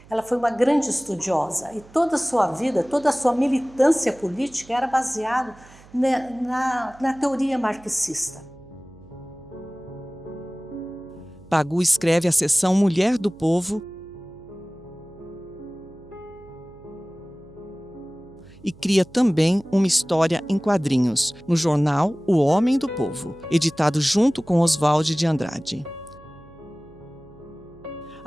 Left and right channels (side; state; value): right; noise; hum, 23 dB below the sound